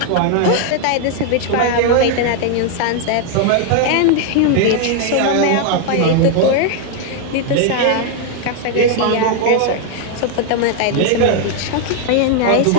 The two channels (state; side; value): different; both; correlation 0.00